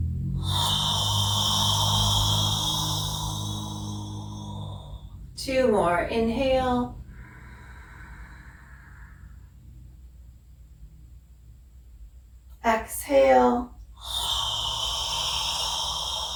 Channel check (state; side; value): identical; both; correlation 1.00